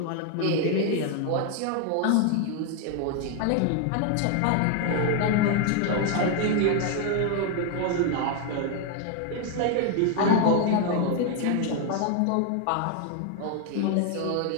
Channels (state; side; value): different; both; correlation 0.01